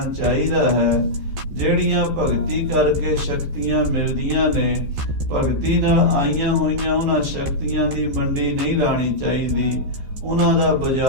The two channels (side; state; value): left; late; 14 ms